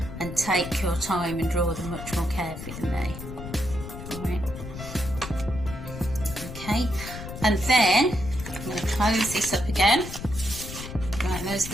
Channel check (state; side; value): noise; left; rumble, 10 dB below the sound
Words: and take your time and draw them much more carefully than me. Alright. Okay, and then I'm going to close this up again. Right, those